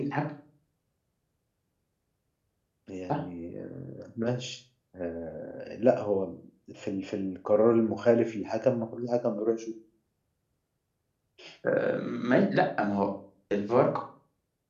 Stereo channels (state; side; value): identical; both; correlation 1.00